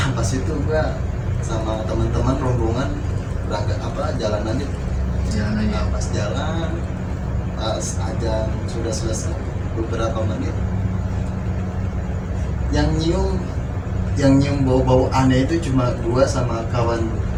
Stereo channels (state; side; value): identical; both; correlation 1.00